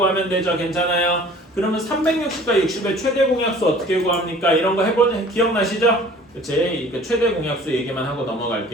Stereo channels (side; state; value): both; normal; correlation 0.49